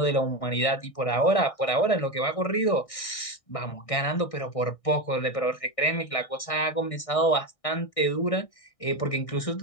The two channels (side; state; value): right; late; 1.6 ms